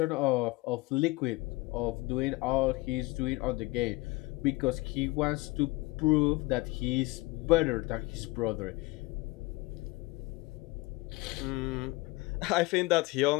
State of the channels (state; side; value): quieter; right; 22.2 dB